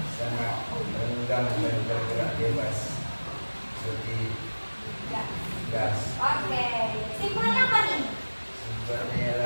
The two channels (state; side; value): inverted; both; correlation -1.00